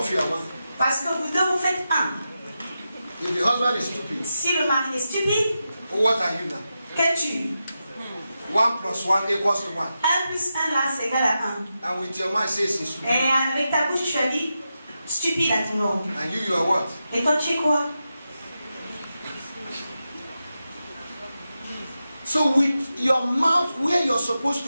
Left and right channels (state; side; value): inverted; both; correlation -0.89